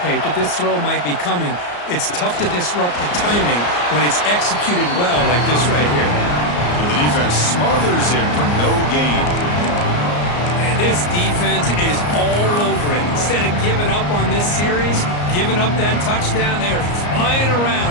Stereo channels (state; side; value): late; right; 34 ms